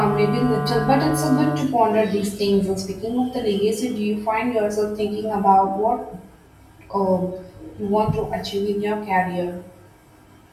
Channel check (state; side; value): identical; both; correlation 1.00